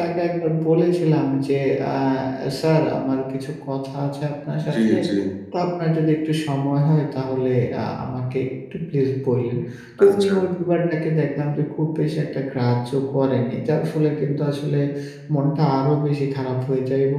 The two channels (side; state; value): both; identical; correlation 1.00